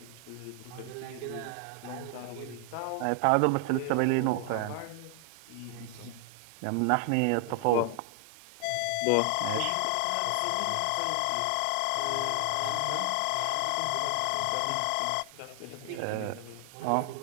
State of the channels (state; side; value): different; both; correlation 0.00